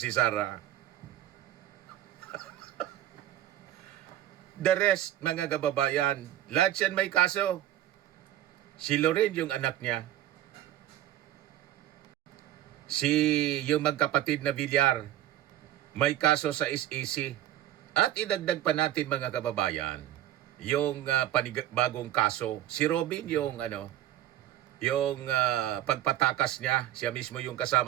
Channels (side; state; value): left; quieter; 13.0 dB